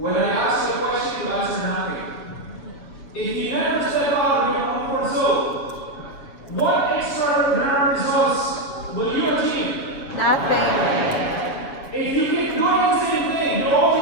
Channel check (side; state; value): right; late; 7.1 ms